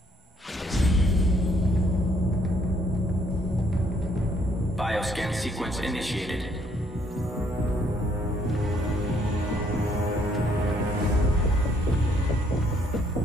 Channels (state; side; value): normal; both; correlation 0.68